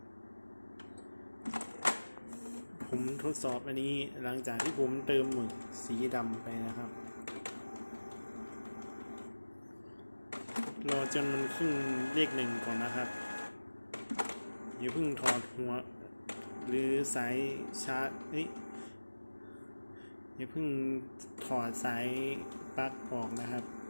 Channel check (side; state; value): both; inverted; correlation -1.00